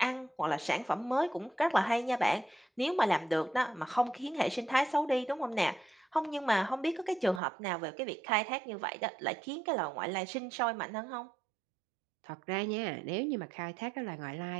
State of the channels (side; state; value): left; drops out; at 7.4 s